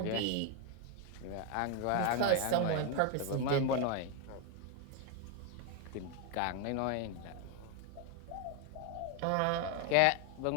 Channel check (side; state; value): both; different; correlation 0.01